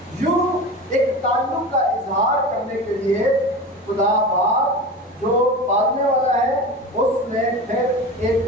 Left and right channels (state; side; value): normal; both; correlation 0.30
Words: یوں ایک تعلق کا اظہار کرنے کے لیے خدا باپ جو پالنے والا ہے اس نے پھر